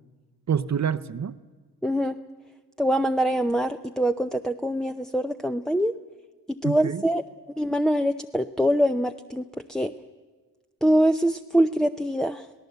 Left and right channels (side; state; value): both; normal; correlation 0.88